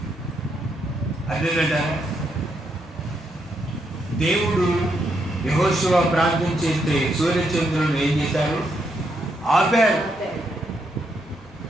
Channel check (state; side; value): normal; both; correlation 0.78